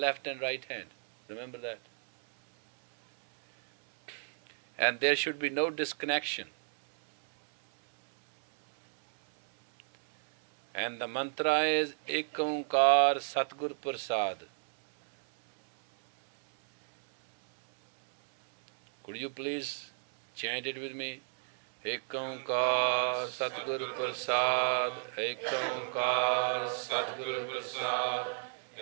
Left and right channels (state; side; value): silent; left; 56 dB below the other